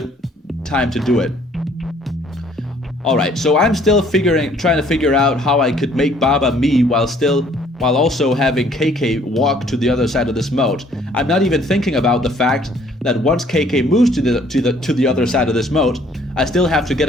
time to do it. Alright, so I'm still trying to figure out how I could make Baba me while also having KK walk to the other side of this moat. I'm not even thinking about the fact that once KK moves to the other side of this moat, I still have to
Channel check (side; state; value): both; normal; correlation 0.60